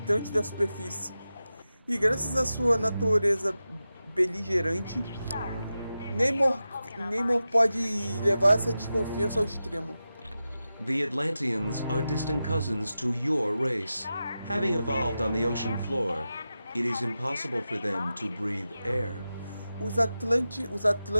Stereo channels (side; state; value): both; inverted; correlation -0.92